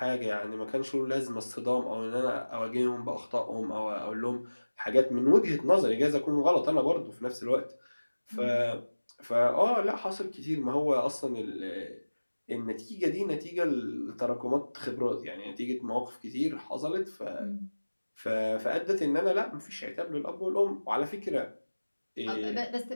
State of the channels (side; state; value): both; inverted; correlation -1.00